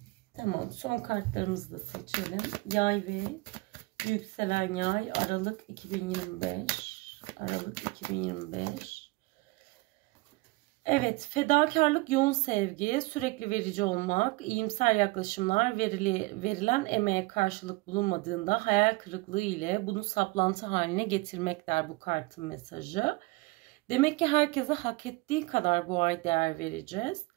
Tamam, son kartlarımızı da seçelim. Yay ve yükselen yay, Aralık 2025. Aralık 2025. Evet, fedakarlık, yoğun sevgi, sürekli verici olmak, iyimser yaklaşımlar, verilen emeğe karşılık bulunmadığında hayal kırıklığı ile bunu saplantı haline getirmek der bu kartın mesajı. Demek ki herkese hak ettiği kadar bu ay değer vereceğiz.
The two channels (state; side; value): quieter; left; 23.9 dB